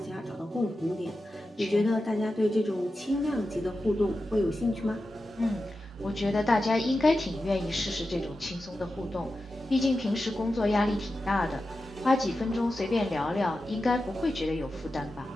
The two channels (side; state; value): both; normal; correlation 0.92